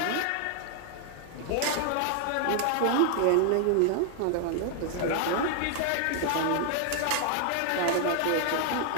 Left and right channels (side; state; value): both; different; correlation 0.00